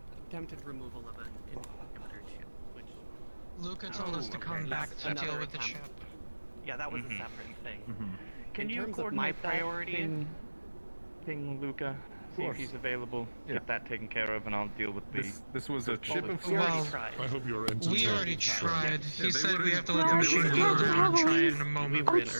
attempted removal of an inhibitor chip, which... Luca told us to come back to deal with the chip. Yeah, that was a separate thing. Can In you terms of coordinate my that? priority, Ping Luca, see if he's available. Yeah. Get that taken care of, and I'll deal with the. This was a chip of we already Well, tried. I hope you're entertained. We already tried. Yeah, He they said were we in- have to let the Well, machine it's go not around and try really- it in a moment. Oh, it's so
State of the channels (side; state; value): both; inverted; correlation -1.00